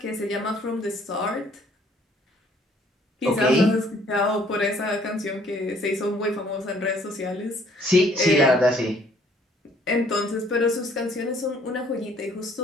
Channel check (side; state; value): both; normal; correlation 0.61